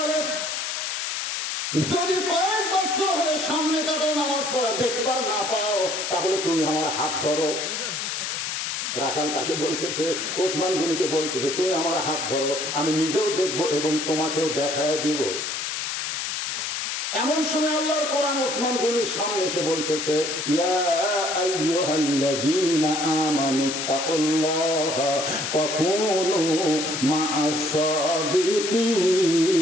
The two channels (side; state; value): left; noise; hiss, 3 dB below the sound